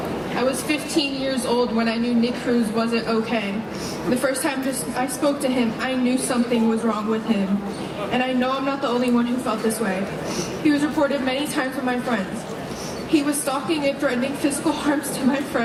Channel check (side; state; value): both; identical; correlation 1.00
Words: I was 15 years old when I knew Nick Cruz wasn't okay. The first time I spoke to him, I knew something was wrong with him. And I know I'm not the only one who felt this way. He was reported many times with my friends. He was stalking and threatening physical harms to my